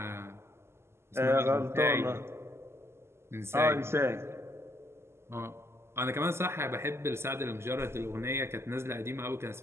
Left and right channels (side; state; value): left; late; 0.12 ms